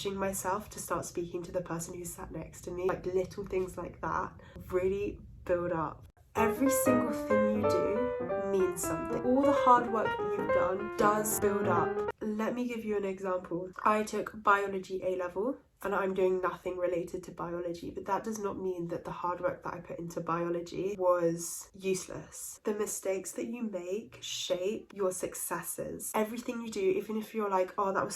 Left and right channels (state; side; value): identical; both; correlation 1.00